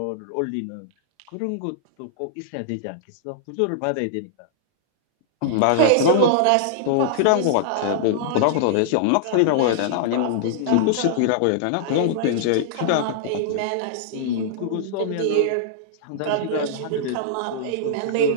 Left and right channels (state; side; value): different; both; correlation -0.01